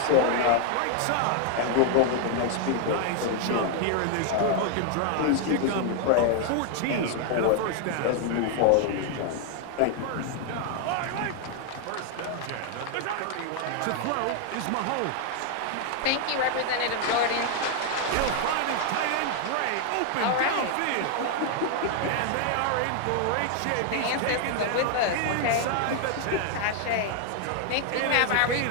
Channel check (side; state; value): both; different; correlation 0.00